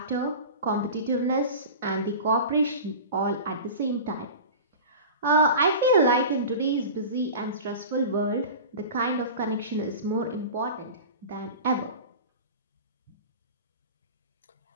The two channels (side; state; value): both; inverted; correlation -0.33